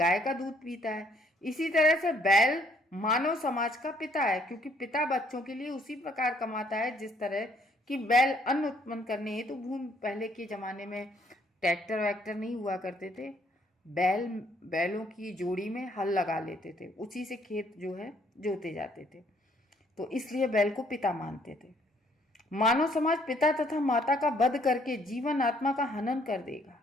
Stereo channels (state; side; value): normal; both; correlation 0.65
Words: का दूध पीता है। इसी तरह से बैल मानव समाज का पिता है, क्योंकि पिता बच्चों के लिए उसी प्रकार कमाता है जिस तरह कि बैल अन्न उत्पन्न करने हेतु भूमि, पहले के जमाने में ट्रैक्टर वैक्टर नहीं हुआ करते थे, बैलों की जोड़ी में हल लगा लेते थे, उसी से खेत जो है जोते जाते थे, तो इसलिए बैल को पिता मानते थे। मानव समाज पिता तथा माता का वध करके जीवन आत्मा का हनन कर देगा।